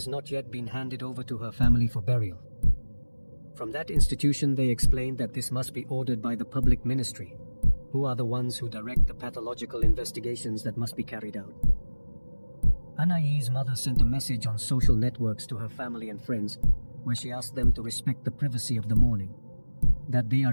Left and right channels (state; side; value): inverted; both; correlation -1.00